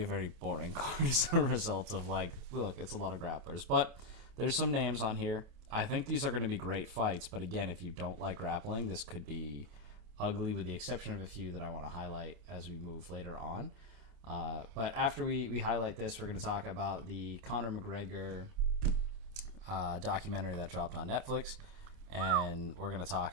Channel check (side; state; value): left; late; 27 ms